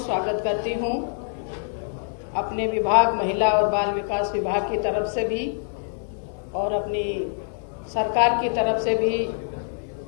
करती हूँ। अपने विभाग महिला और बाल विकास विभाग की तरफ से भी और अपनी सरकार की तरफ से भी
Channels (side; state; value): right; silent; digital silence